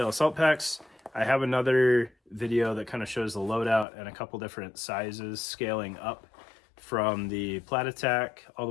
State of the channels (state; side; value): drops out; right; at 3.9 s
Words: Assault Packs, I have another video that kind of shows the loadout and a couple different sizes scaling up from the Plat Attack all